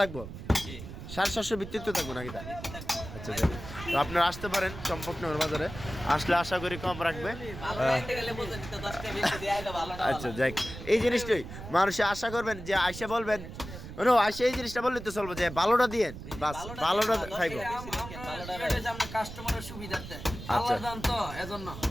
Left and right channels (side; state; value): right; noise; rumble, 11 dB below the sound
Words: থাকবো, 750 ভিত্তিতে থাকবো নাকি? আচ্ছা যাই, তো আপনারা আসতে পারেন চম্পকনগর বাজারে। আসলে আশা করি কম রাখবে। আচ্ছা যাই, এই জিনিসটাই মানুষে আশা করবেন যে আইসা বলবেন, আইসা এই জিনিসটা বললে তো চলবো যে ভালোটা দিয়েন, বাস ভালোটা খাইবো। কাস্টমারের সুবিধার্থে আচ্ছা। আল্লাহর দান তো এজন্য।